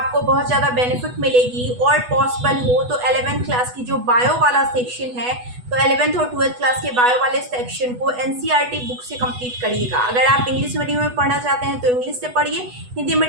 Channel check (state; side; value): late; left; 8.1 ms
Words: बहुत ज़्यादा बेनिफिट मिलेगी। और पॉसिबल हो तो 11th क्लास की जो बायो वाला सेक्शन है, तो 11th और 12th क्लास के बायो वाले सेक्शन को एनसीईआरटी बुक से कंप्लीट करिएगा। अगर आप इंग्लिश मीडियम में पढ़ना चाहते हैं तो इंग्लिश से पढ़िए, हिंदी